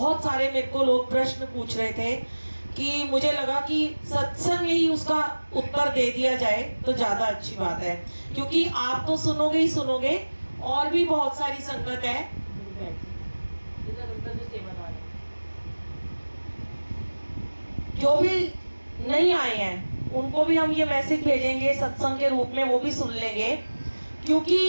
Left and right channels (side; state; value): both; inverted; correlation -1.00